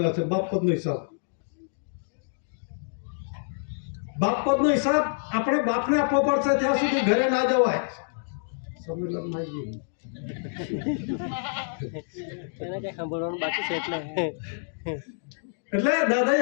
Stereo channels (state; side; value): silent; right; digital silence